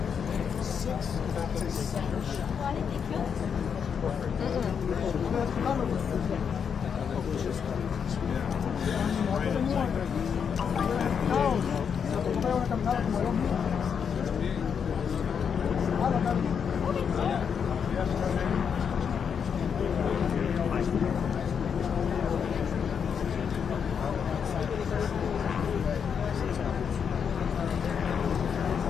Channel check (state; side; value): quieter; right; 7.0 dB